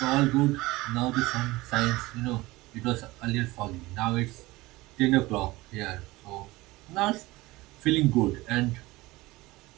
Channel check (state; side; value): quieter; left; 20.1 dB